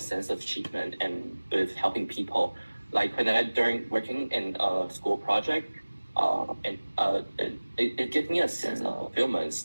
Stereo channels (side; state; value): both; inverted; correlation -1.00